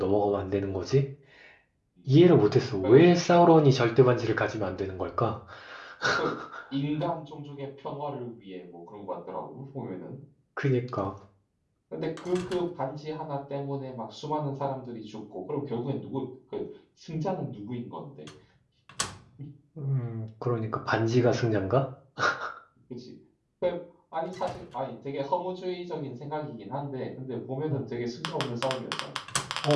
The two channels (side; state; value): both; identical; correlation 1.00